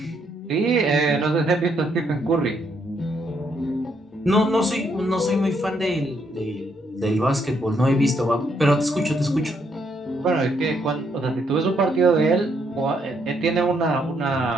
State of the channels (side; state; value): both; normal; correlation 0.74